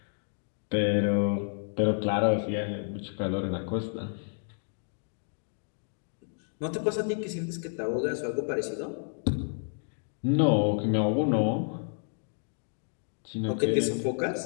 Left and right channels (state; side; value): silent; right; digital silence